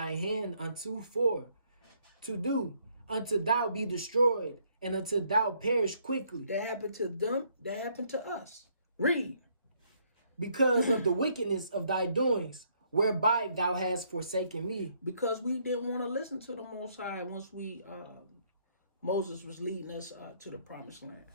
hand unto for to do, until thou be destroyed, and until thou perish quickly. That happened to them. That happened to us. Read. Because of the wickedness of thy doings, whereby thou hast forsaken me. Because we didn't want to listen to the Most High once Moses was leading us to the promised land.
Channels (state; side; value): inverted; both; correlation -0.69